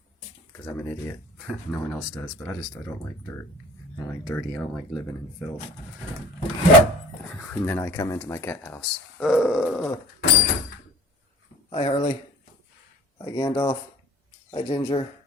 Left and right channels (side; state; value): both; normal; correlation 0.45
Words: because I'm an idiot. No one else does, but I don't like dirt. I don't like dirty. I don't like living in filth. And then I come into my cat house. Hi, Harley. Hi, Gandalf. Hi, Ginger.